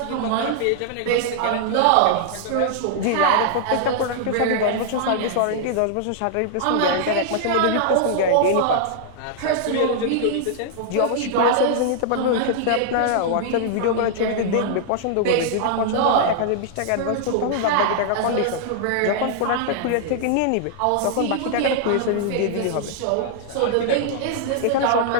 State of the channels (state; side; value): different; both; correlation -0.01